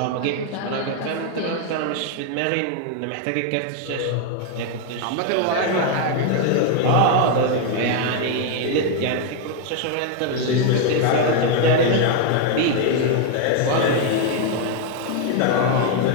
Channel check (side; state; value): both; different; correlation 0.01